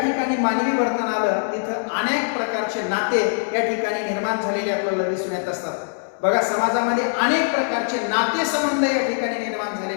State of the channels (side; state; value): right; silent; digital silence